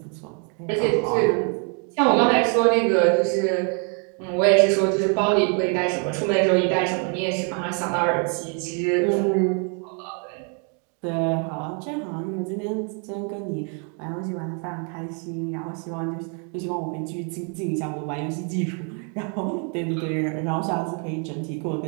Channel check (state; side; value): quieter; left; 38.8 dB